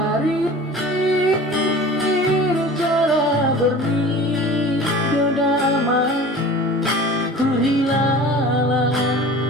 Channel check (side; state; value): both; normal; correlation 0.40